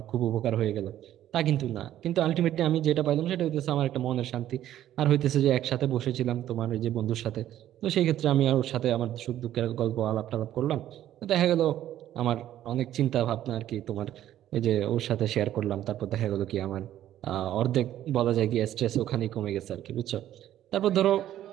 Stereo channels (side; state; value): left; quieter; 12.3 dB